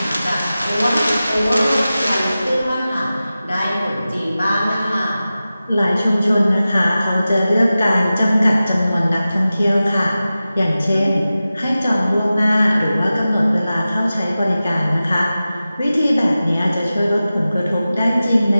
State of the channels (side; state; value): both; inverted; correlation -0.95